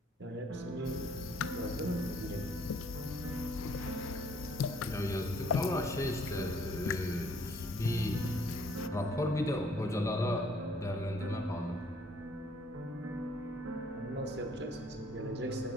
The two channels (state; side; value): normal; both; correlation 0.62